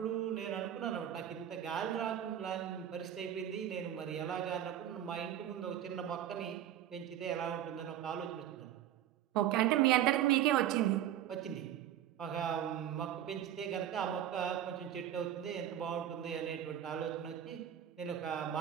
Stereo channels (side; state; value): left; quieter; 11.0 dB